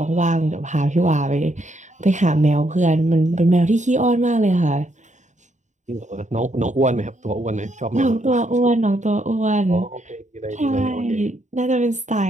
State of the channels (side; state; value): left; late; 0.35 ms